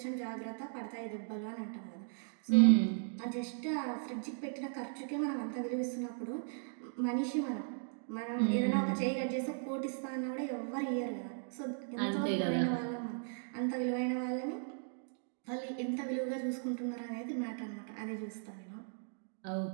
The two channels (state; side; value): silent; left; digital silence